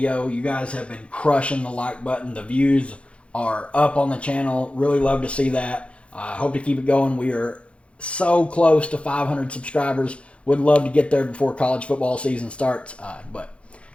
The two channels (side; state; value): right; late; 0.060 ms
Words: You guys have been crushing the like button. The views are up on the channel. Really love to see that. Hope to keep it going. We are so close to 500 subscribers. Would love to get there before college football season starts. But